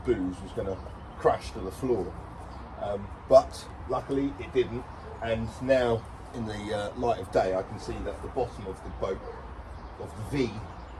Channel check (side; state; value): both; identical; correlation 1.00